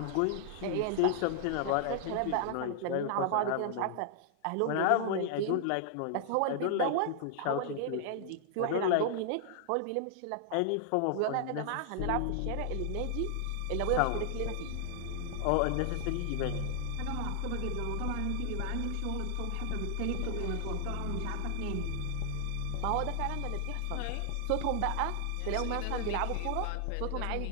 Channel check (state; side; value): different; both; correlation 0.00